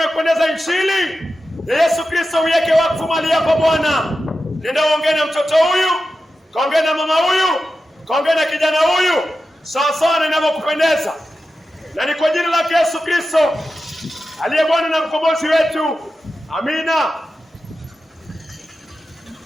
injili ya Yesu Kristo, uiweke wakfu mahali hapa Bwana. Nenda uongee na mtoto huyu, kaongee na mama huyu, kaongee na kijana huyu, sawa sawa na inavyokupendeza. Na ni kwa jina lake Yesu Kristo aliye Bwana na mkombozi wetu. Amina.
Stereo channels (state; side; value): normal; both; correlation 0.92